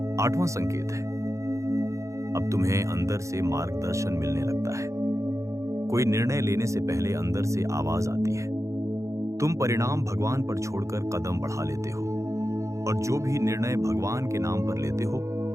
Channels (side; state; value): left; late; 0.15 ms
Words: आठवां संकेत है, अब तुम्हें अंदर से मार्गदर्शन मिलने लगता है। कोई निर्णय लेने से पहले अंदर से आवाज आती है। तुम परिणाम भगवान पर छोड़कर कदम बढ़ा लेते हो, और जो भी निर्णय भगवान के नाम पर लेते हो,